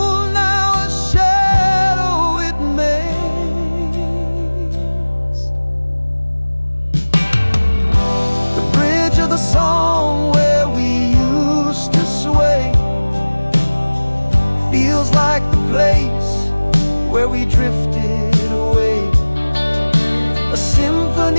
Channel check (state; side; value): inverted; both; correlation -1.00